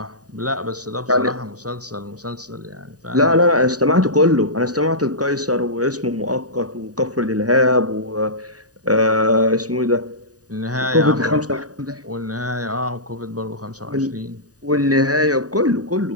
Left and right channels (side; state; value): left; late; 0.68 ms